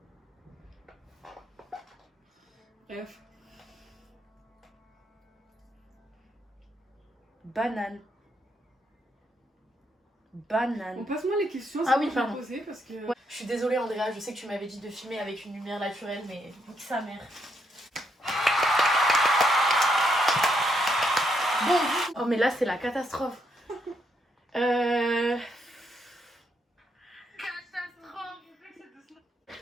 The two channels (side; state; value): both; normal; correlation 0.76